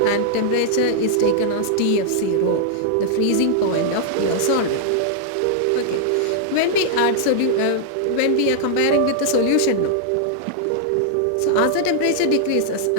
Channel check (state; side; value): different; both; correlation -0.01